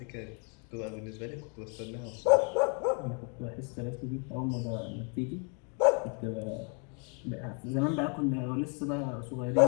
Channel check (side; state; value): right; quieter; 37.9 dB